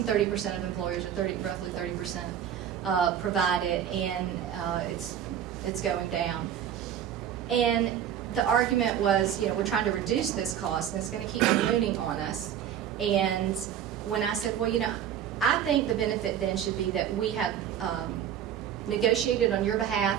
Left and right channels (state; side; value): quieter; left; 9.7 dB